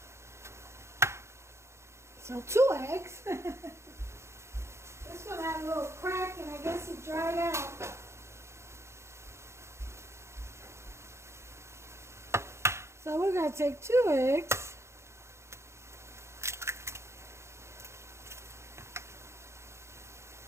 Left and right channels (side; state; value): left; late; 0.13 ms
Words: So 2 eggs. This one had a little crack and I guess it dried out. So we're going to take 2 eggs.